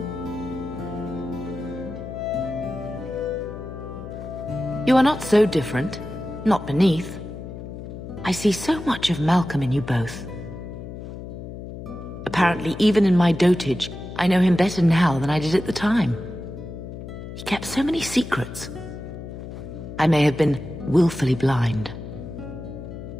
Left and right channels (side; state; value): left; noise; hum, 10 dB below the sound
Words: You are not so different. Not beneath. I see so much of Malcolm in you both. Apparently, even in my dotage, I know him better now than I did at the time. He kept so many secrets. I may have been willfully blind.